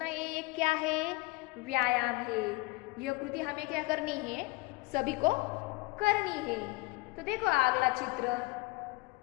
ये एक क्या है? व्यायाम है। यह कृति हमें क्या करनी है? सभी को करनी है। तो देखो अगला चित्र।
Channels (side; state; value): right; quieter; 23.9 dB